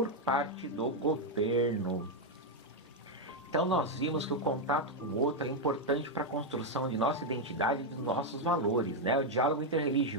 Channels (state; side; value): normal; both; correlation 0.02